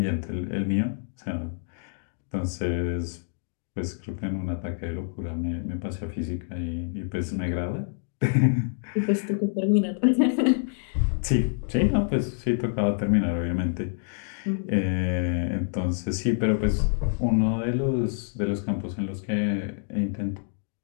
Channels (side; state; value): right; silent; digital silence